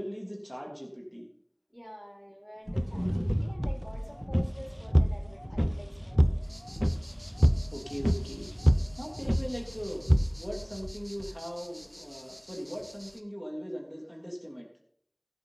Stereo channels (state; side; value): identical; both; correlation 1.00